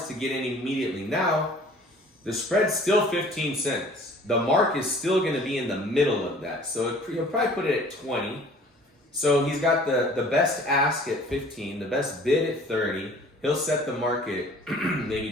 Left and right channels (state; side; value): normal; both; correlation 0.51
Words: to get in immediately. Now, the spread's still 15 cents. The mark is still going to be in the middle of that. So you'll probably put it at 20. So he's got the best ask at 15, the best bid at 30. He'll set the market